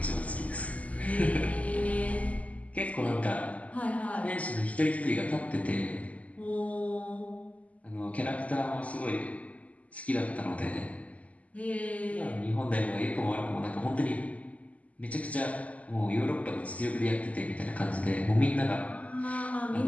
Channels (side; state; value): right; late; 0.071 ms